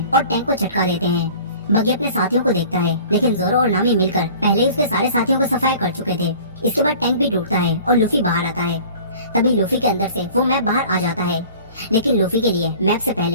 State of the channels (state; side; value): inverted; both; correlation -0.45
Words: और टैंक को झटका देते हैं। बगी अपने साथियों को देखता है, लेकिन जोरो और नामी मिलकर पहले ही उसके सारे साथियों को सफाया कर चुके थे। इसके बाद टैंक भी टूटता है और लूफी बाहर आता है। तभी लूफी के अंदर से वो मैप बाहर आ जाता है, लेकिन लूफी के लिए मैप से